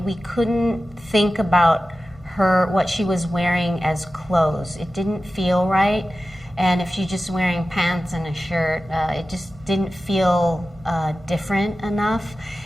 we couldn't think about what she was wearing as clothes. It didn't feel right. And if she's just wearing pants and a shirt, it just didn't feel different enough.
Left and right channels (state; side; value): normal; both; correlation 0.94